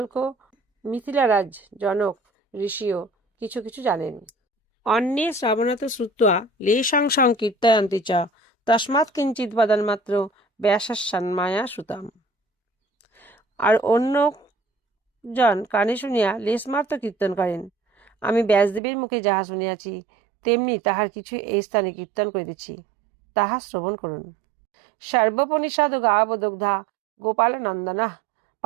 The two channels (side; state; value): left; drops out; at 18.8 s